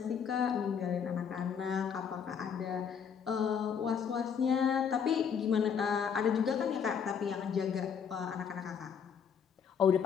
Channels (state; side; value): quieter; right; 7.2 dB